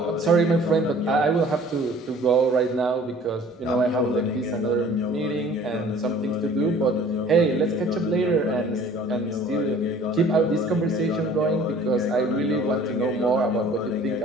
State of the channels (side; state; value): both; normal; correlation 0.51